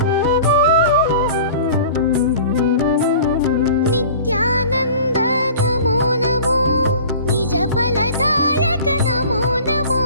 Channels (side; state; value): both; inverted; correlation -0.43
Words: नित्यानंद नमो नमो निज फलदायक नमो नमो